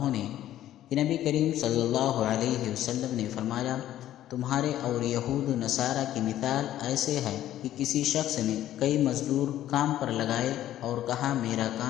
نے کہ نبی کریم صلی اللہ علیہ وسلم نے فرمایا، تمہارے اور یہود و نصارہ کی مثال ایسے ہے کہ کسی شخص نے کئی مزدور کام پر لگائے اور کہا میرا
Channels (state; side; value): quieter; right; 12.7 dB